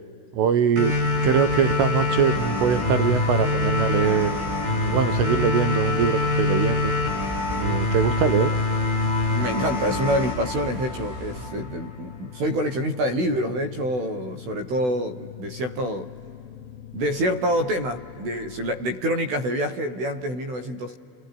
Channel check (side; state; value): left; late; 16 ms